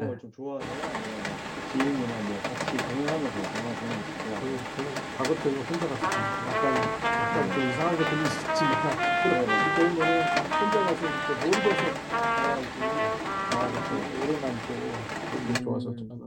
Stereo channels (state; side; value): identical; both; correlation 1.00